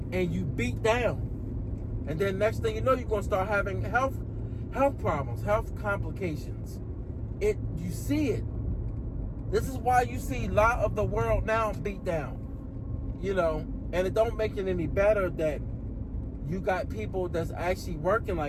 you beat down. And then next thing you know, you're gonna start having health problems, health complications. You see it. This is why you see a lot of the world now beat down, and it don't make it any better that you got people that's actually working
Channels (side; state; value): both; identical; correlation 1.00